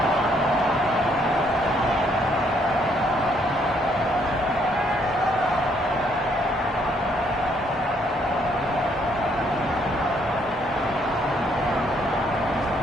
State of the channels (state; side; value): normal; both; correlation 0.69